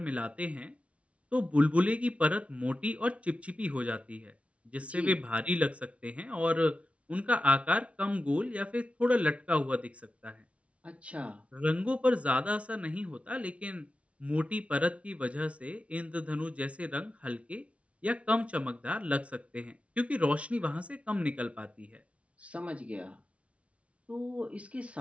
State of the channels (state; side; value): late; left; 0.063 ms